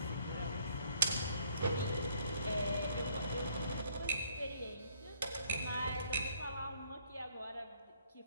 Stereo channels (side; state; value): both; inverted; correlation -0.64